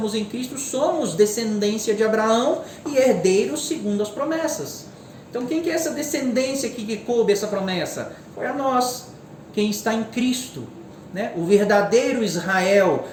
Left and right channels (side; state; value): both; identical; correlation 1.00